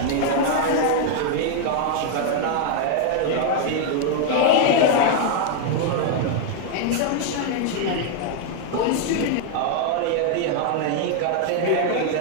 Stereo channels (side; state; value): both; different; correlation 0.00